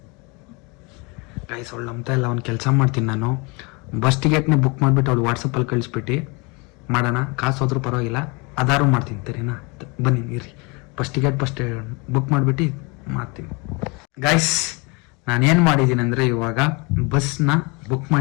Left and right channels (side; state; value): right; quieter; 29.2 dB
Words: ಗೈಸ್, ಅವಳು ನಂಬ್ತಾ ಇಲ್ಲ. ಒಂದು ಕೆಲಸ ಮಾಡ್ತೀನಿ ನಾನು, ಬಸ್ ಟಿಕೆಟ್ನ ಬುಕ್ ಮಾಡಿಬಿಟ್ಟು ಅವಳು ವಾಟ್ಸಪ್ಪಲ್ಲಿ ಕಳಿಸ್ಬಿಟ್ಟು ಮಾಡೋಣ. ಕಾಸು ಹೋದ್ರೂ ಪರವಾಗಿಲ್ಲ, ಅದಾರು ಮಾಡ್ತೀನಿ. ಸರಿನಾ? ಬನ್ನಿ ಇರ್ರಿ, ಬಸ್ ಟಿಕೆಟ್ ಬುಕ್ ಮಾಡಿಬಿಟ್ಟು ಮಾಡ್ತೀನಿ. ಗೈಸ್, ನಾನೇನು ಮಾಡಿದ್ದೀನಿ ಅಂದರೆ, ಇವಾಗ ಬಸ್ನ ಬುಕ್